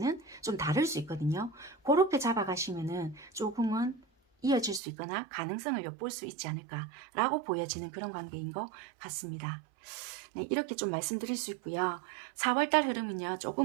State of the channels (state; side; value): drops out; left; at 4.8 s